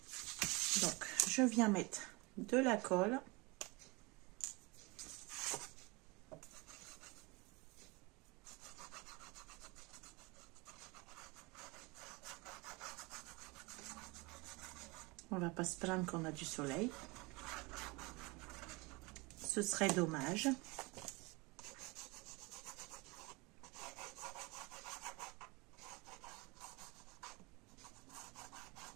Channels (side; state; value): left; quieter; 25.7 dB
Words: Donc, je viens mettre de la colle. On va pas se plaindre qu'on a du soleil. Ce serait dommage.